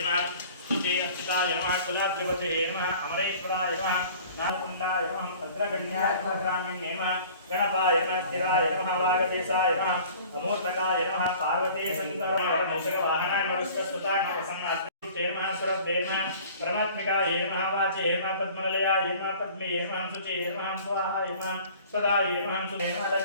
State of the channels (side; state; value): both; inverted; correlation -0.47